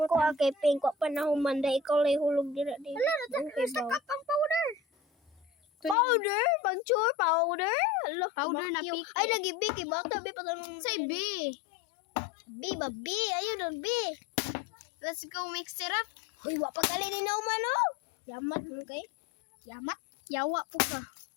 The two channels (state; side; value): drops out; right; at 6.0 s